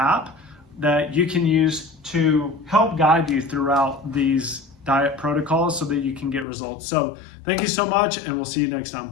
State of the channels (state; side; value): drops out; right; at 6.5 s